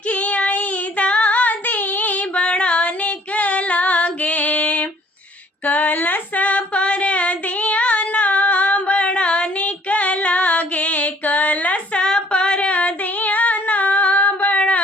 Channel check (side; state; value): both; normal; correlation 0.58